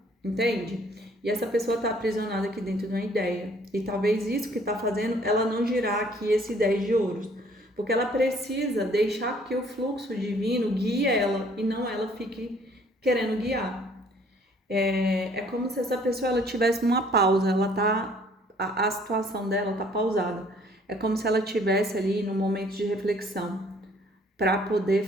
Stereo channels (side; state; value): both; normal; correlation 0.59